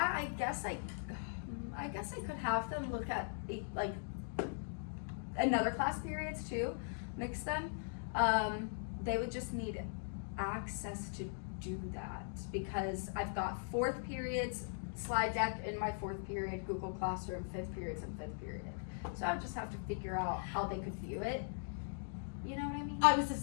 I guess I could have them look at like another class periods too, mix them. They would just need access to do that because I've got 4th periods slide deck in my 4th period, Google Classroom, 5th periods and 5th period. So I would just have to figure out how they could view it. You know what I mean? I was the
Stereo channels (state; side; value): silent; right; digital silence